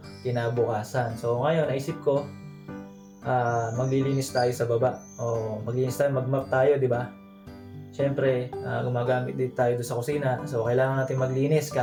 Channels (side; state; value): both; identical; correlation 1.00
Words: kinabukasan. So ngayon naisip ko maglilinis tayo sa baba o maglinis tayo, mag-mop tayo, di ba? Syempre gumagamit din tayo doon sa kusina, so kailangan natin maglinis